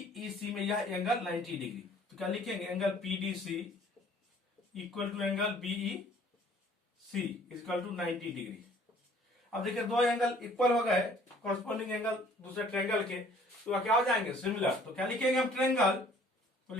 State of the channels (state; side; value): normal; both; correlation 0.55